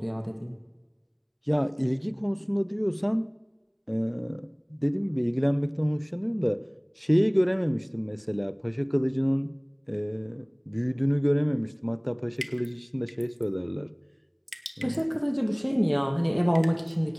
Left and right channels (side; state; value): both; identical; correlation 1.00